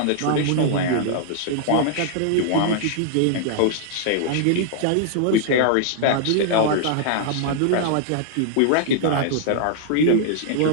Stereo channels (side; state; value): both; different; correlation -0.01